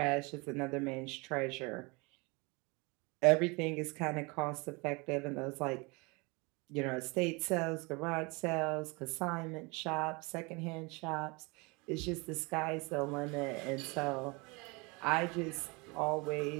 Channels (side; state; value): left; quieter; 27.7 dB